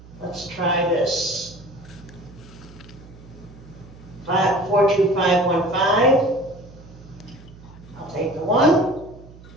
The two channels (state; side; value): noise; right; hum, 20 dB below the sound